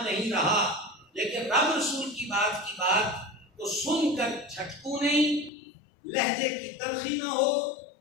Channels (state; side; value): drops out; right; at 5.5 s